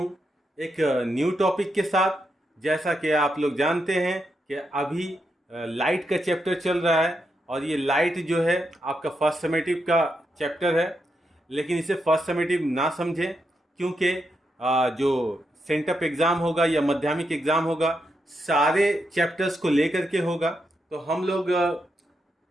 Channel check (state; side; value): normal; both; correlation 0.83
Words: एक न्यू टॉपिक के साथ। जैसा कि आप लोग जानते हैं कि अभी लाइट का चैप्टर चल रहा है और ये लाइट जो है आपका फर्स्ट समेटिव का चैप्टर है। लेकिन इसे फर्स्ट समेटिव ना समझें, क्योंकि जो सेंटअप एग्ज़ाम होगा या माध्यमिक एग्ज़ाम होगा सारे चैप्टर्स को लेकर के होगा। तो हम लोग